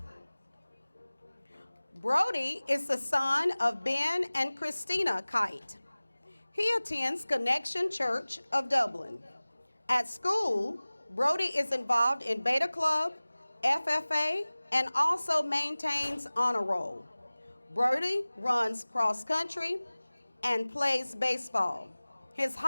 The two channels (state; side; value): inverted; both; correlation -0.99